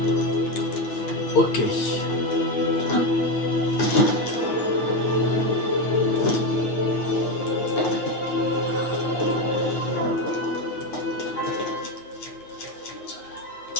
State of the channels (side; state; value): right; late; 9.4 ms